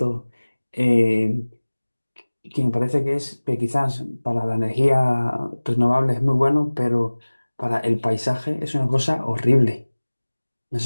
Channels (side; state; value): both; inverted; correlation -1.00